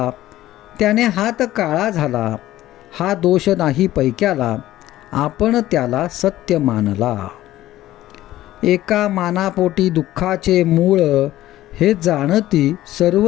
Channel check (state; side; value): quieter; right; 14.8 dB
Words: त्याने हात काळा झाला. हा दोष नाही पैक्याला, आपण त्याला सत्य मानला. एका मानापोटी दुःखाचे मूळ, हे जाणती